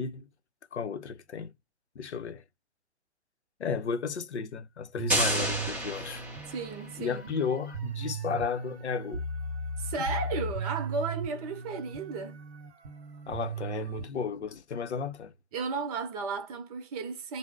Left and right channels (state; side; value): normal; both; correlation 0.01